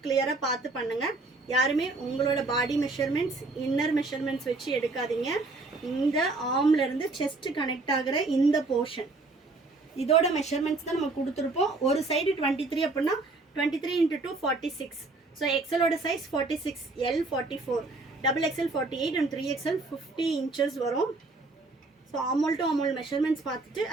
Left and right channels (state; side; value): quieter; left; 3.4 dB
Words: கிளியராக பார்த்து பண்ணுங்கள். யாருமே உங்களோட பாடி மெஷர்மெண்ட்ஸ், இன்னர் மெஷர்மெண்ட்ஸ் வச்சு எடுக்காதீங்க. இந்த ஆர்ம்லேருந்து செஸ்ட் கனெக்ட் ஆகிற இந்த போர்ஷன் இதோட மெஷர்மெண்ட்ஸ் தான் நம்ம கொடுத்துருப்போம். ஒரு சைடு 23 அப்படின்னா 23 × 2 46. ஸோ எக்ஸலோட size 46, L 44, XXL 48 and 3XL 50 inches வரும். So armhole to armhole measurements பார்த்துட்டு